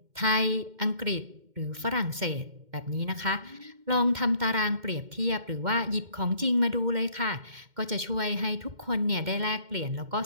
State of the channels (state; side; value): late; left; 2.1 ms